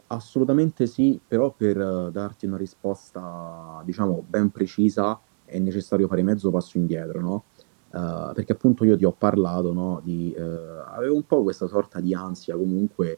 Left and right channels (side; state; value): left; silent; 63 dB below the other